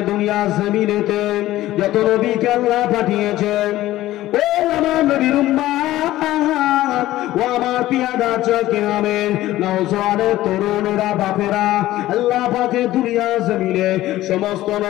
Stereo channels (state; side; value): quieter; right; 15.5 dB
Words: দুনিয়া জমিনেতে যত নবীকে আল্লাহ পাঠিয়েছেন, ও আমার নবীর উম্মাত, ও আমার পিয়াদা চোখে আমেন নওজওয়ানের তরুণেরা বাপেরা, আল্লাহ পাকে দুনিয়া জমিনে সমস্ত